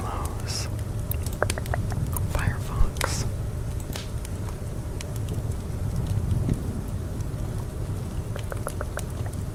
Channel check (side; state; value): both; identical; correlation 1.00